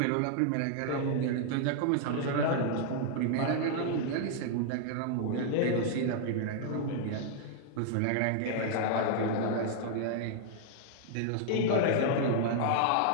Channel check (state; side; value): different; both; correlation 0.00